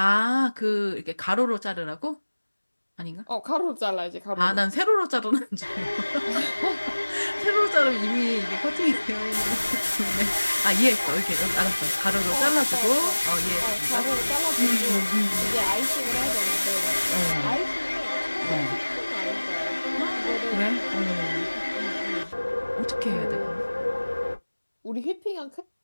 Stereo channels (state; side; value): inverted; both; correlation -1.00